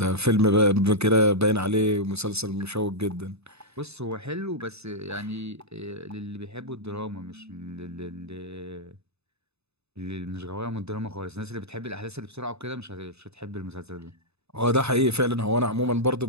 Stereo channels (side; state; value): left; late; 0.80 ms